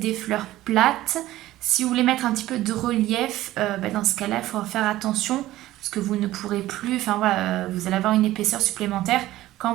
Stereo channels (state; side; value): quieter; left; 15.6 dB